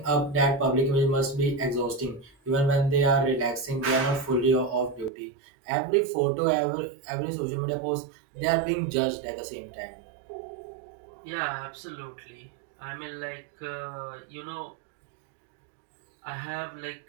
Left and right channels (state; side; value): drops out; left; at 5.1 s